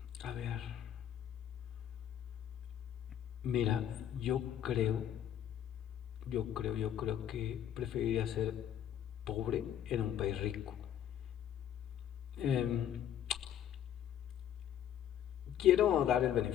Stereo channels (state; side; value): quieter; right; 10.3 dB